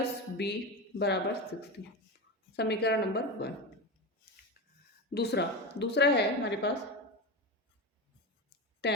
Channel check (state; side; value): normal; both; correlation 0.21